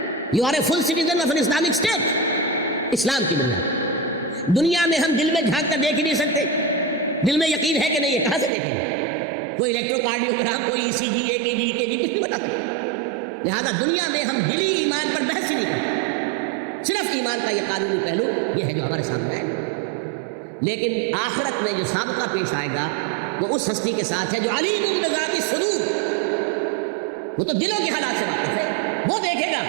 You are a full citizen of an Islamic state. اسلام کی بنیاد. دنیا میں ہم دل میں جھانک کر دیکھ ہی نہیں سکتے. دل میں یقین ہے کہ نہیں ہے, کہاں سے دیکھیں گے؟ کوئی الیکٹروکارڈیوگرام, کوئی ECG, EKG کچھ نہیں بتا سکتے. لہذا دنیا میں ہم دلی ایمان پر بحث ہی نہیں کرتے. صرف ایمان کا یہ قانونی پہلو یہ ہے جو ہمارے سامنے آئے گا. لیکن آخرت میں جو سابقہ پیش آئے گا وہ اس ہستی کے ساتھ ہے جو علیم بذات الصدور. وہ تو دلوں کے حالات سے واقف ہے. وہ دیکھے گا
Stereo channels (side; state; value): left; drops out; at 8.5 s